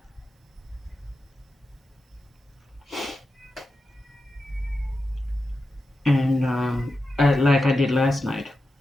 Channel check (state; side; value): normal; both; correlation 0.90